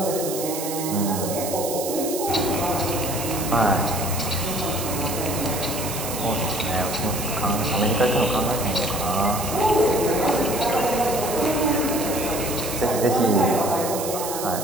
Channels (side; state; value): right; noise; hiss, 6 dB below the sound